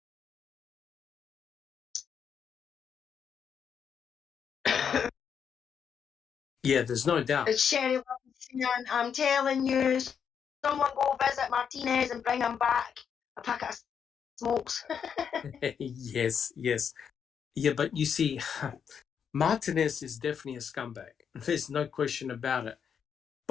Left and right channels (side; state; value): right; quieter; 7.4 dB